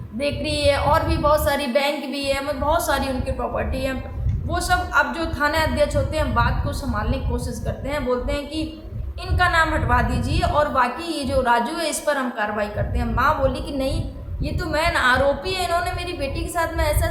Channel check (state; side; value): identical; both; correlation 1.00